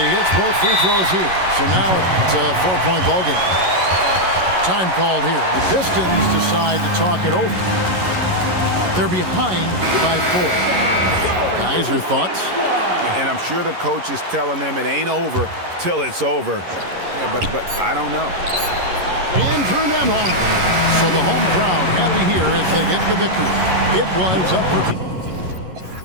hits both free throws here. So now it's a 4-point ballgame. Time called here. The Pistons decide to talk it over. They're behind by 4. Guys, your thoughts? And I'm sure the coach is telling them it ain't over till it's over. Yeah, but I don't know. Andrew Nemhard. So the home crowd happy here as they get the victory. It was up for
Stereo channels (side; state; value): left; late; 11 ms